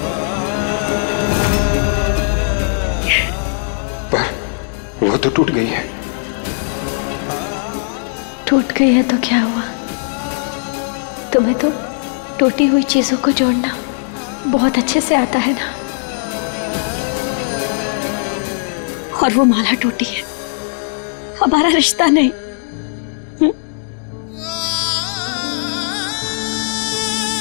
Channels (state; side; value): silent; right; digital silence